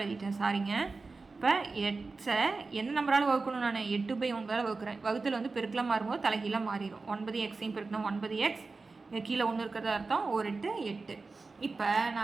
சாரிங்க. இப்போ எக்ஸை எந்த நம்பரால் வகுக்கணும், நான் 8/9 வகுக்கிறேன். வகுத்தல் வந்து பெருக்கலாம் மாறும்போது தலைகீழ மாறிடும். 9xையும் பெருக்கணும் 9x கீழே 1 இருக்கிறத அர்த்தம் 1 8 8. இப்போ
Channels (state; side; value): quieter; left; 3.9 dB